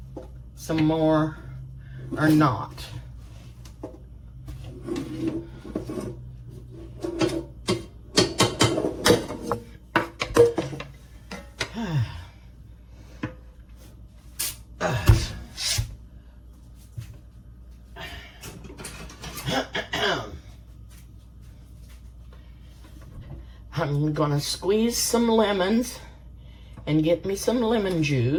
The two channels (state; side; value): identical; both; correlation 1.00